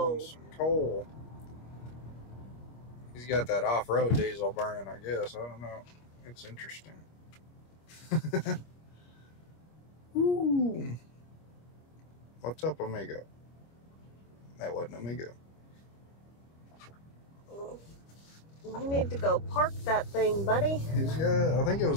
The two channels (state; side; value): late; right; 25 ms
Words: He's rolling some coal. He's got that off-road diesel burning, I guess. I don't know. It's interesting. Ooh. What's up, amigo? That wasn't amigo. You need to go park that thing, buddy. He's got, I think it was